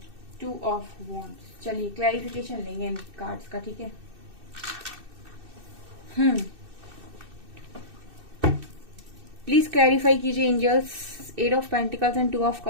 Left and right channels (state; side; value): late; left; 2.6 ms